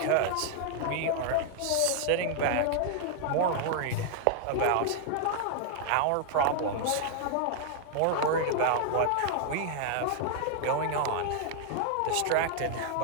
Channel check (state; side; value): different; both; correlation 0.00